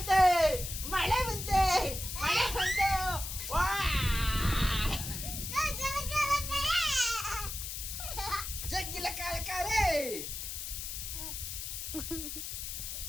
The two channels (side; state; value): left; noise; hiss, 6 dB below the sound